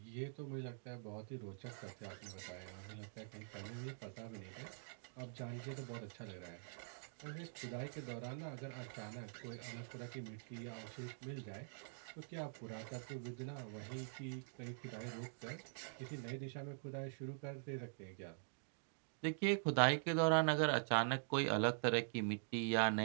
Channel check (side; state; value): left; silent; digital silence